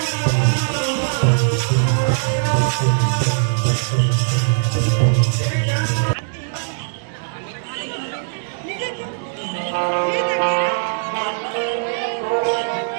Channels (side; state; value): left; silent; digital silence